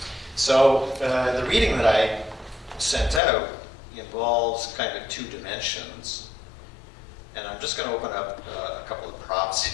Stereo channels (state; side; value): drops out; right; at 3.2 s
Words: So the reading that I sent out involves kind of two dimensions, and I'm just going to open up a couple of props